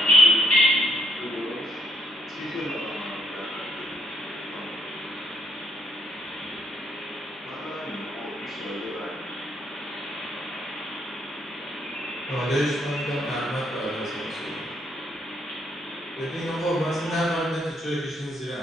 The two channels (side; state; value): both; normal; correlation 0.71